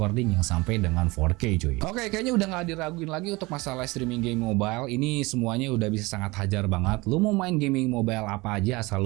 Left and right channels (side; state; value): left; quieter; 23.2 dB